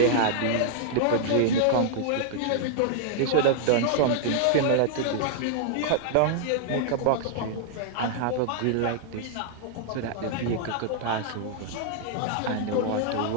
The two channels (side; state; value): both; different; correlation -0.01